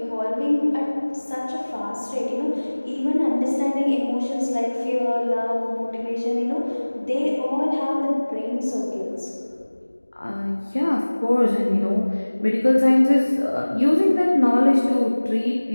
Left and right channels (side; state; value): both; inverted; correlation -1.00